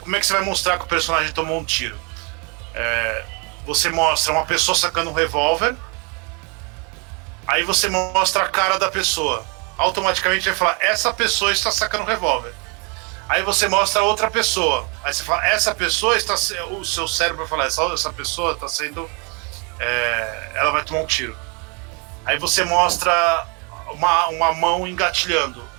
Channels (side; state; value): left; quieter; 33.4 dB